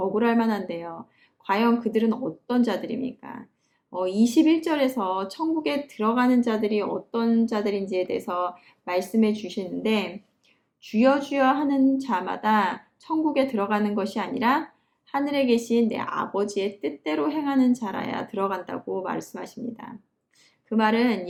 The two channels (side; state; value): both; identical; correlation 1.00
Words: 만한데요. 과연 그들은 어떤 자들입니까? 21절에서 천국에 들어가는 자들이 어떤 자들인지에 대해서 말씀해 주시는데 주여 주여 하는 자마다 천국에 들어가는 것이 아니라 하늘에 계신 내 아버지의 뜻대로 행하는 자라야 들어간다고 말씀하십니다. 그 말은